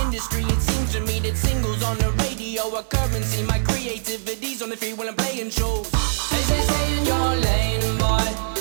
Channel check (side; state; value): left; silent; digital silence